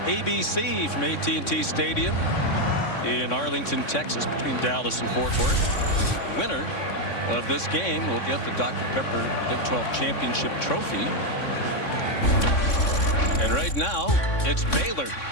ABC from AT&T Stadium in Arlington, Texas, between Dallas and Fort Worth. The winner of this game will get the Dr. Pepper Big 12 Championship trophy. And right now, it's Baylor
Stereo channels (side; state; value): right; late; 3.6 ms